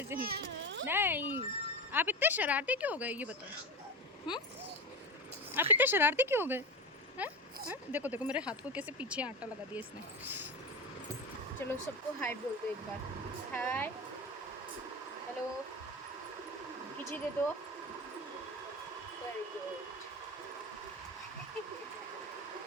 नहीं। आप इतने शरारती क्यों हो गए ये बताओ। आप इतने शरारती क्यों हो गए हैं? देखो देखो मेरे हाथ को कैसे पीछे आटा लगा दिया इसने। चलो सबको हाय बोल दो एक बार। हाय हेलो खींची दे दो। Very good.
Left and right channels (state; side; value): normal; both; correlation 0.21